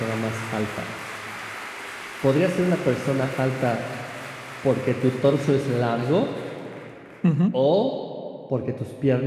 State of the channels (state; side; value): identical; both; correlation 1.00